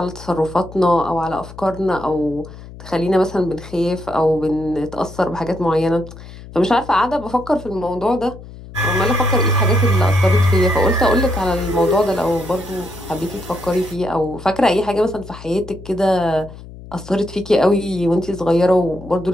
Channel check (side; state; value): left; noise; hum, 16 dB below the sound